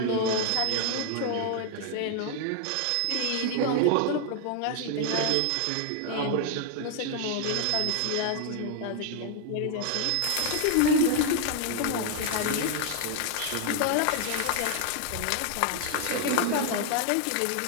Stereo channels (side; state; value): both; different; correlation 0.00